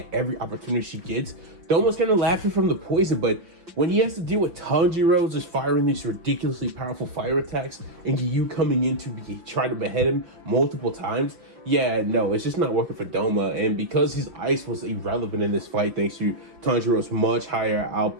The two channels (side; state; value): left; late; 5.5 ms